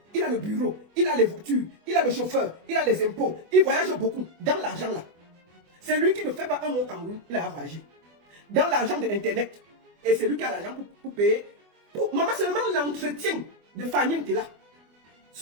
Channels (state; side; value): late; left; 24 ms